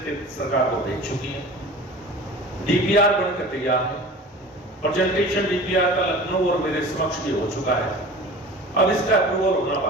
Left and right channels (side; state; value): both; normal; correlation 0.39